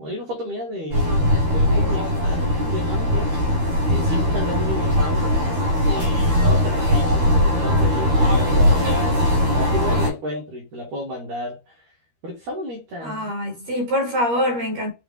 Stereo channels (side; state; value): left; late; 13 ms